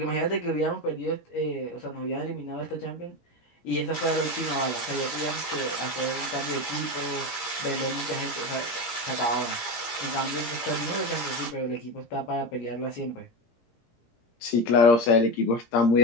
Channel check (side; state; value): right; late; 17 ms